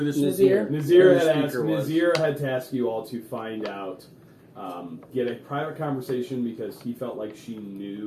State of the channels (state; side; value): identical; both; correlation 1.00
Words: Nazir. Nazir Who the had speaker was. Nazir had tasked you all to find out, get a private conversation because he felt like she